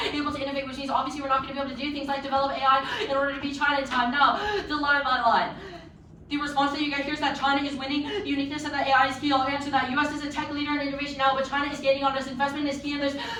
able to innovate, which means obviously we're not going to be able to do things like develop AI in order to beat China in time. Now, the line by line. The response that you get here is that China is winning. The uniqueness of that AI is key. I'll answer that. US is a tech leader in innovation now, but China is gaining on us. Investment is key, and there's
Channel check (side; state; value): both; identical; correlation 1.00